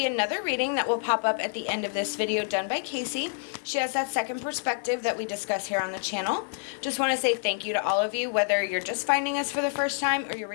another reading that will pop up at the end of this video done by KACEE. She has that second perspective that we discuss here on the channel. Just want to say thank you to all of you, whether you're just finding us for the first time or you're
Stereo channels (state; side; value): silent; right; 60 dB below the other